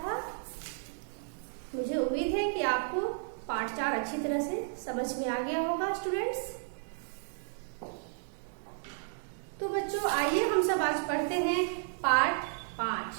था। मुझे उम्मीद है कि आपको पाठ 4 अच्छी तरह से समझ में आ गया होगा स्टूडेंट्स। तो बच्चों आइए हम सब आज पढ़ते हैं पाठ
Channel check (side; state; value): left; silent; 56 dB below the other